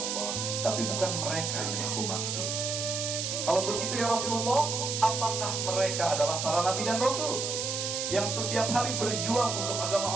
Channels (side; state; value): right; noise; hiss, 2 dB below the sound